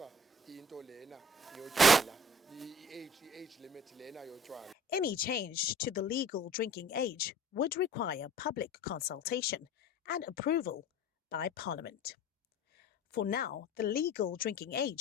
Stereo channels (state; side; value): normal; both; correlation 0.47